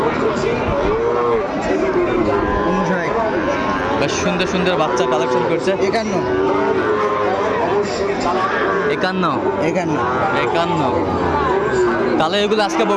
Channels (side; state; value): both; identical; correlation 1.00